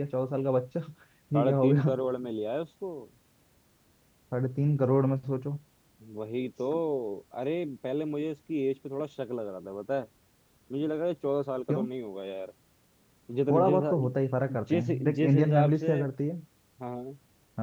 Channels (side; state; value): both; identical; correlation 1.00